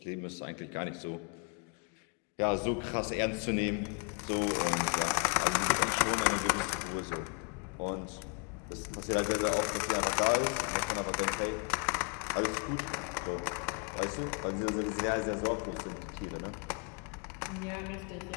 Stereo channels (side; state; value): right; quieter; 36.2 dB